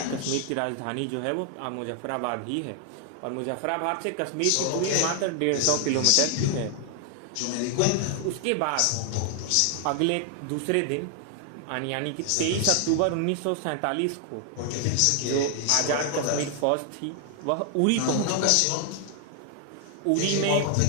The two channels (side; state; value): both; different; correlation 0.00